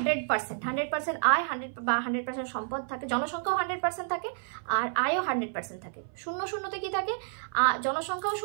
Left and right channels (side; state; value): left; silent; 57 dB below the other